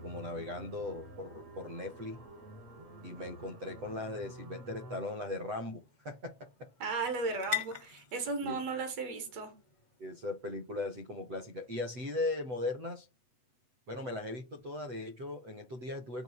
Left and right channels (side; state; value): left; late; 8.1 ms